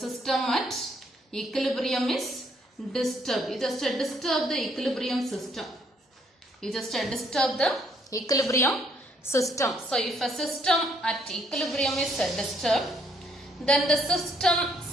at equilibrium is disturbed, you just disturb the equilibrium system. You just disturb the equilibrium system. So, if a system at equilibrium is disturbed, then the system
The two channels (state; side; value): normal; both; correlation 0.68